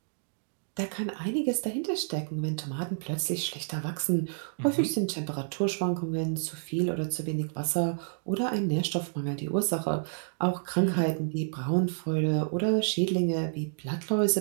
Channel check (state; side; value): silent; left; digital silence